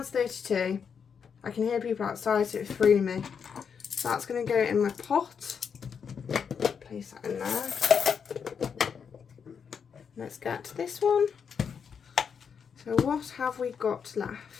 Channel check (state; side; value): quieter; right; 6.7 dB